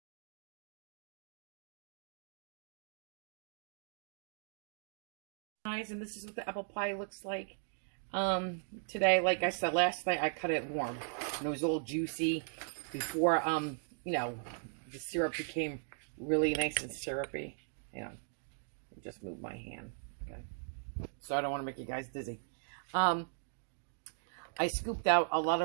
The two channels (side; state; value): left; silent; digital silence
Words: Guys, and this is what the apple pie looks like. Today, like I said, last night I cut it warm. And it was all juicy before, you know, the syrup became really nice and syrupy. You know, I just moved my hand. Okay. So I don't want to make you guys dizzy. I scooped out a lot